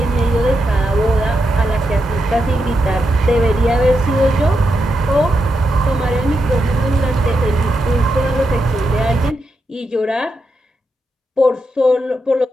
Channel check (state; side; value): normal; both; correlation 0.85